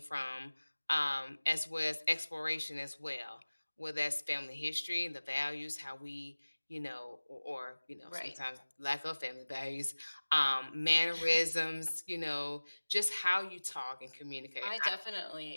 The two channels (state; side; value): inverted; both; correlation -1.00